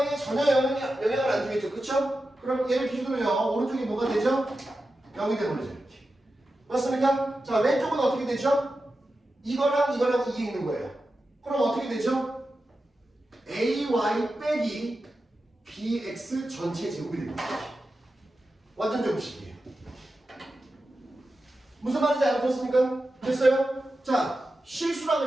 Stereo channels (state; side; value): normal; both; correlation 0.91